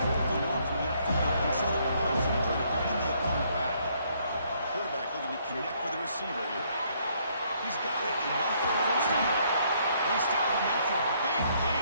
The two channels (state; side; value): inverted; both; correlation -0.68